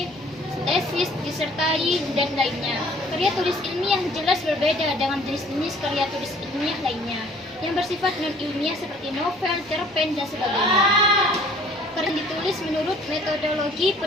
tesis, disertai, dan lainnya. Karya tulis ilmiah jelas berbeda dengan jenis-jenis karya tulis ilmiah lainnya yang bersifat non-ilmiah seperti novel, cerpen, dan sebagainya. Karya ditulis menurut metodologi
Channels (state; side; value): normal; both; correlation 0.55